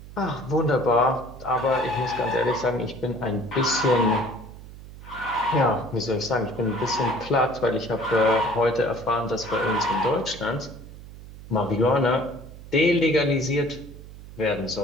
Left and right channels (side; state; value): right; noise; hum, 16 dB below the sound